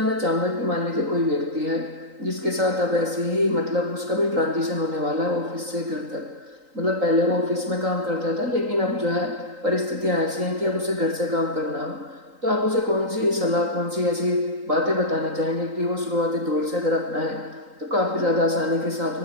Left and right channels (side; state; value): left; late; 3.8 ms